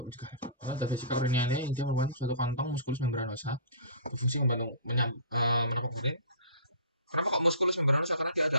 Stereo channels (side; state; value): both; inverted; correlation -0.40